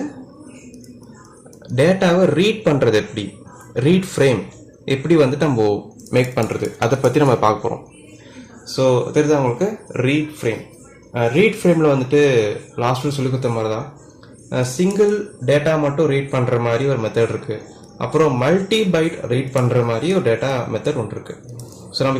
டேட்டாவை ரீட் பண்ணுறது எப்படி, ரீட் ஃப்ரேம் எப்படி வந்துட்டு நம்ம மேக் பண்ணுறது, அதை பற்றி நம்ம பார்க்க போகிறோம். ஸோ தெரியுது உங்களுக்கு ரீட் ஃப்ரேம். ரீட் ஃப்ரேமில் வந்துட்டு லாஸ்ட்டில் சொல்லி கொடுத்த மாதிரி தான் சிங்கிள் டேட்டா மட்டும் ரீட் பண்ணுற மாதிரி ஒரு மெத்தட் இருக்குது. அப்புறம் மல்டி பைட் ரீட் பண்ணுற மாதிரி ஒரு டேட்டா மெத்தட் ஒன்று இருக்குது. ஸோ நம்ம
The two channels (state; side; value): identical; both; correlation 1.00